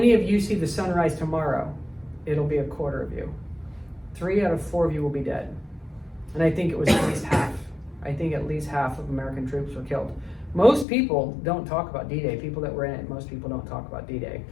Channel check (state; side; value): drops out; right; at 10.9 s